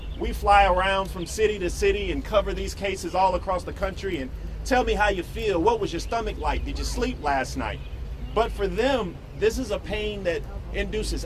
We fly around from city to city and cover these cases all across the country and tell me how you feel. What was your stomach like? Did you sleep last night? But for them, this is a pain that induces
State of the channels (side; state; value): both; identical; correlation 1.00